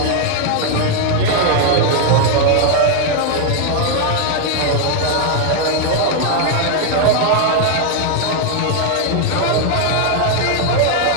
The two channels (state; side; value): different; both; correlation 0.00